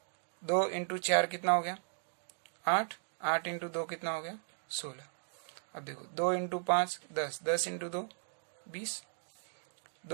2 इंटू 4 कितना हो गया 8, 8 इंटू 2 कितना हो गया 16। अब देखो 2 into 5 10, 10 into 2 20,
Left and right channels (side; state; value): left; silent; digital silence